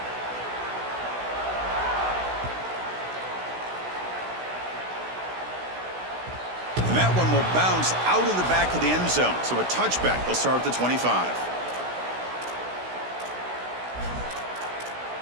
And that one will bounce out of the back of the end zone. So a touchback. They'll start at the 25.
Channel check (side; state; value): left; late; 16 ms